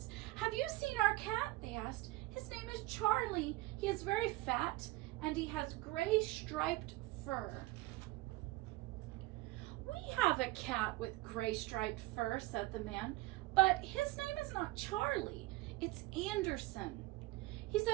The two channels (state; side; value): quieter; left; 19.6 dB